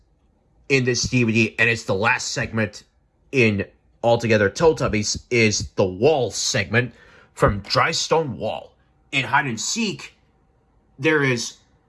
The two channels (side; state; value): both; identical; correlation 1.00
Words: in this DVD, and it's the last segment in Altogether Teletubbies, is the wall segment from Dry Stone Wall. In Hide and Seek, there is